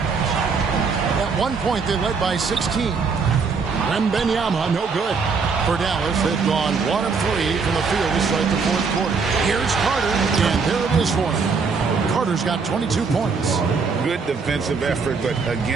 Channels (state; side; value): quieter; left; 5.0 dB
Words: At one point, they led by 16. Wembanyama, no good. For Dallas, they've gone 1 of 3 from the field to start the fourth quarter. Here's Carter, and there it is for him. Carter's got 22 points. Good defensive effort, but